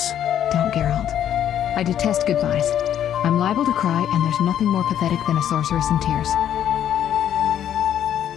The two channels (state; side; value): quieter; right; 10.3 dB